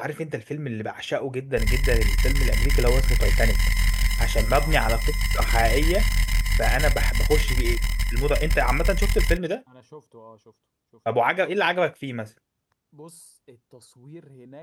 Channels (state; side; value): identical; both; correlation 1.00